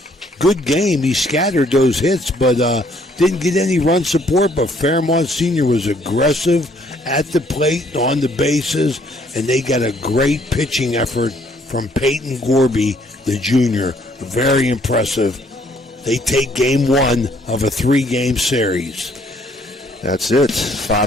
good game. He scattered those hits, but didn't get any run support. But Fairmont Senior was aggressive at the plate, on the bases, and they got a great pitching effort from Peyton Gorby, the junior. Very impressive. They take game 1 of a 3-game series. That's it.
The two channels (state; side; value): normal; both; correlation 0.64